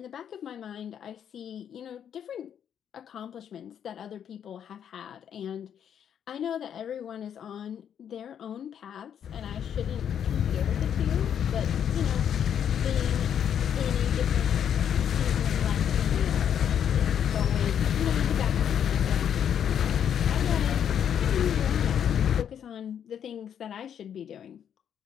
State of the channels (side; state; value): right; quieter; 8.9 dB